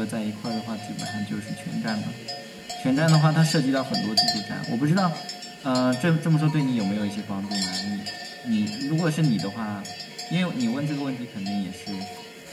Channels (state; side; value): identical; both; correlation 1.00